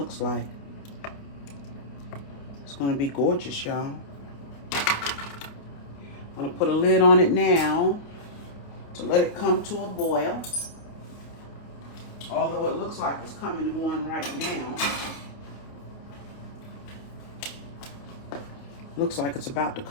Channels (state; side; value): late; right; 28 ms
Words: like. It's going to be gorgeous, y'all. I'm going to put a lid on it now to let it come to a boil. Although it looks like it's coming to one right now. Looks like it's about to